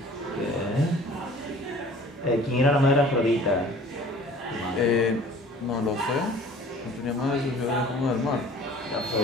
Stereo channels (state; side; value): normal; both; correlation 0.48